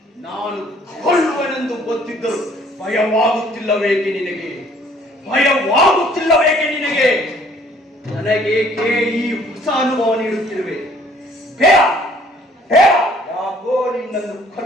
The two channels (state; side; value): normal; both; correlation 0.59